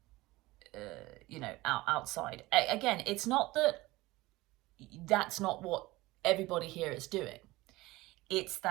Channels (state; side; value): quieter; left; 19.7 dB